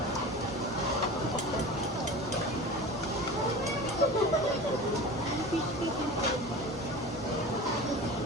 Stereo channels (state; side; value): normal; both; correlation 0.34